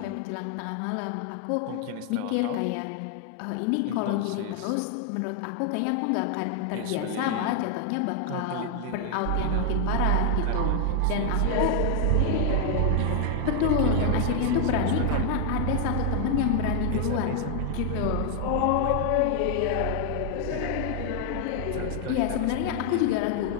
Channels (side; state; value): both; different; correlation 0.00